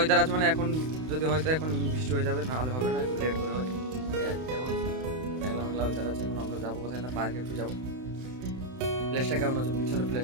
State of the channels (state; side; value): late; left; 31 ms